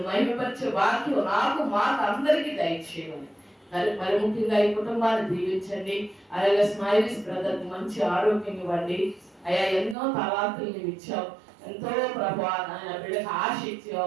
మహిమపరిచే వాక్యం నాకు మాకు అందరికీ దయచేయమని మరి ముఖ్యంగా ఈ కుటుంబాన్ని దీవించండి. అలాగే స్మైలీస్ బ్రదర్ మంచి ఆరోగ్యం ఇవ్వండి. అయ్యా ఎన్నో తలాంతులు నీవు ఇచ్చావు, ఎంతో ప్రభా ఆయన బిడ్డకు ఆశ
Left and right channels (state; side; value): drops out; left; at 10.0 s